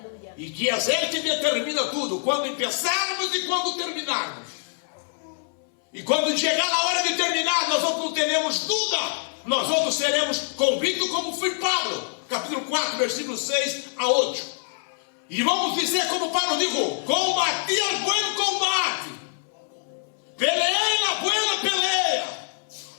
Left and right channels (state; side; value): silent; right; 62 dB below the other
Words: E que é Ele que determina tudo, quando começarmos e quando terminarmos. E quando chegar a hora de terminar, nós não teremos dúvida, nós outros seremos convictos, como foi Paulo, capítulo 4, versículo 6 a 8. E vamos dizer como Paulo dijo: combati o bom combate, peleei na boa peleia,